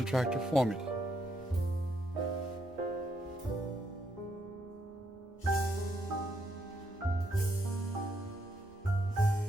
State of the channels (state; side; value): normal; both; correlation 0.76